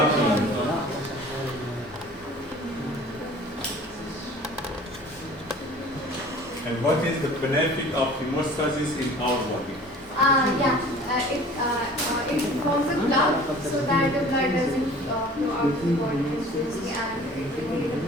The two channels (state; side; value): normal; both; correlation 0.46